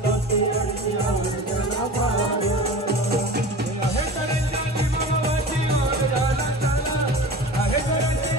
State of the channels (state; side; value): normal; both; correlation 0.35